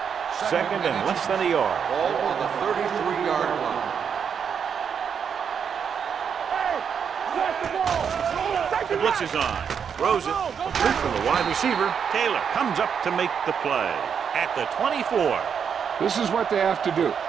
Second and less than a yard. Ball on the 33-yard line. The blitz is on. Throws it. Complete from the wide receiver. Taylor comes up to make the play. At the 24. This is what they have to do.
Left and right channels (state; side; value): quieter; left; 7.2 dB